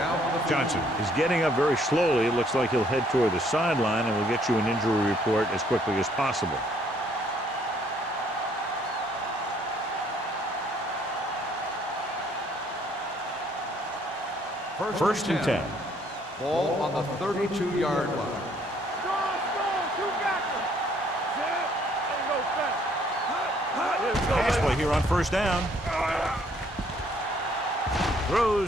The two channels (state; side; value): normal; both; correlation 0.64